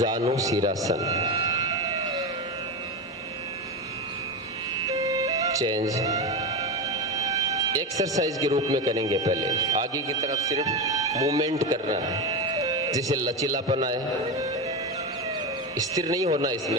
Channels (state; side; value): normal; both; correlation 0.17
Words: शीरासन। चेंज, एक्सरसाइज के रूप में करेंगे। पहले आगे की तरफ सिर्फ मूवमेंट करना है, जिसे लचीलापन आए, स्थिर नहीं होना,